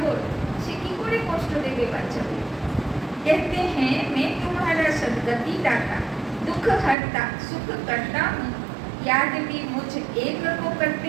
সে কি করে কষ্ট দেবে বাচ্চাকে? कहते हैं मैं तुम्हारा सदगति दाता, दुख हरता, सुख करता हूँ। याद भी मुझ एक को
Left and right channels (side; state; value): left; drops out; at 7.0 s